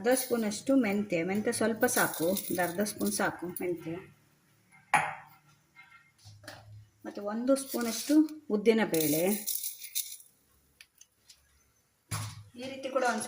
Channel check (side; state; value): both; identical; correlation 1.00